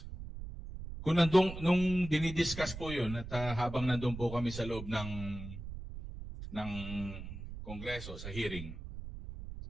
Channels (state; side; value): noise; right; rumble, 10 dB below the sound